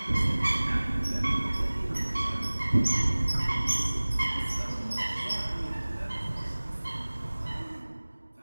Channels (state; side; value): inverted; both; correlation -1.00